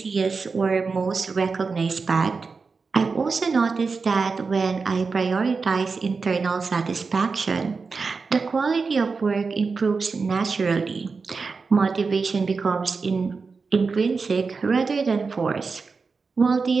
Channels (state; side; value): quieter; left; 4.6 dB